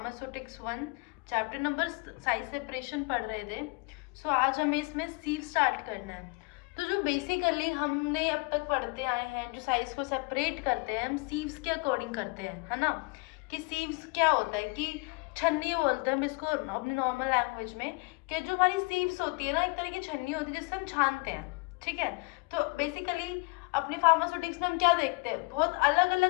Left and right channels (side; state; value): right; quieter; 30.6 dB